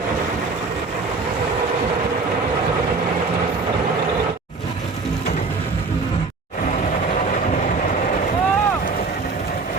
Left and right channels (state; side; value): quieter; left; 4.1 dB